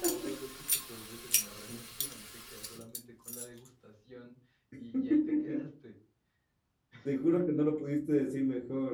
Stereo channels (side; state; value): both; identical; correlation 1.00